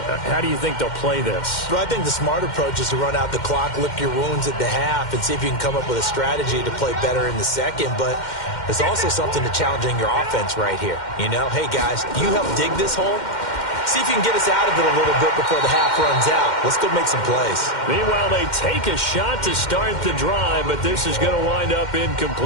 do you think they'll play this? Well, I think the smart approach is to run out the clock, lick your wounds at the half, and see if you can come up with a strategy to play better in the second. But there's also something to challenging your offense right here. You know, hey, guys, you help dig this hole. See if you can get us out of it a little bit before the half runs out. Let's go make some plays. Meanwhile, they take a shot to start the drive, but this is going to wind up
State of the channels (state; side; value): late; right; 2.1 ms